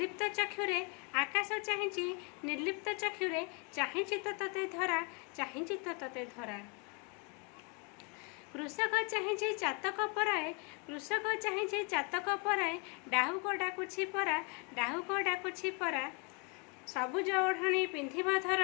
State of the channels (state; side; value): quieter; right; 34.0 dB